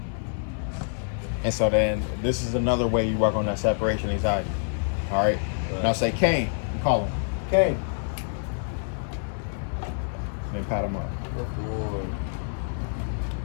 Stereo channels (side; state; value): right; silent; 56 dB below the other